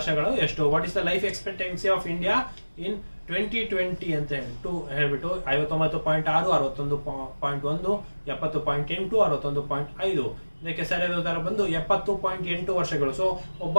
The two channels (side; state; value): both; inverted; correlation -1.00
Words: ಎಷ್ಟು? What is the life expectancy of India in 2020 ಅಂತ ಹೇಳ್ಬಿಟ್ಟು 59.6, 61.1, 70.8, 61.5. ಇದಕ್ಕೆ ಸರಿಯಾದ ಉತ್ತರ ಬಂದು 70.8 ವರ್ಷಗಳು. ಸೊ ಒಬ್ಬ